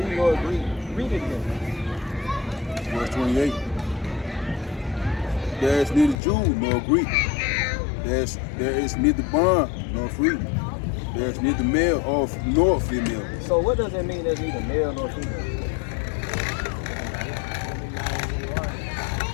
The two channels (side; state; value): right; drops out; at 6.2 s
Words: nor Greek. Read it again. Verse 28. There is neither Jew nor Greek. There is neither bond nor free. There is neither male nor female. So what does it mean there's neither male nor female?